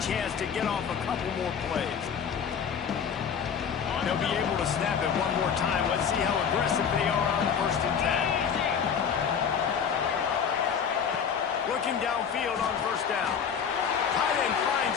chance to get off a couple more plays. They'll be able to snap it one more time. Let's see how aggressive they are on 1st and 10. Looking downfield on 1st down. Tight end finds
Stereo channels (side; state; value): right; quieter; 7.2 dB